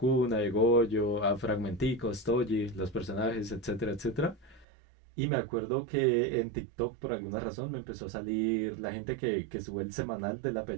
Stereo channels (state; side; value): drops out; left; at 4.7 s